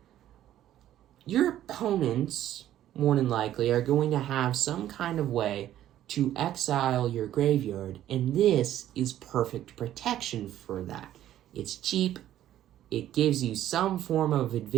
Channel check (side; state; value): left; quieter; 12.3 dB